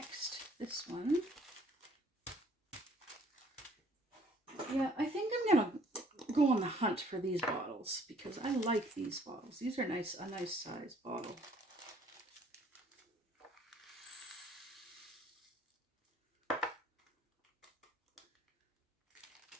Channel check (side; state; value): both; normal; correlation 0.59